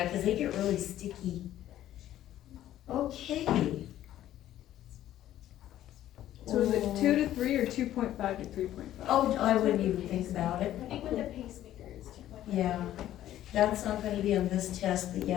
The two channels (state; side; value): quieter; right; 12.8 dB